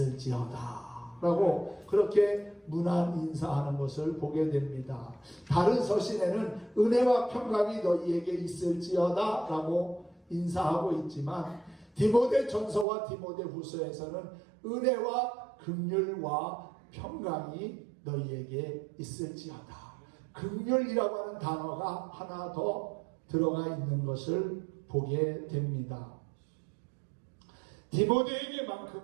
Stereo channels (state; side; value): drops out; left; at 12.9 s